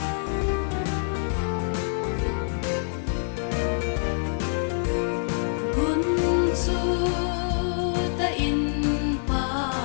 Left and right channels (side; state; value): right; silent; 61 dB below the other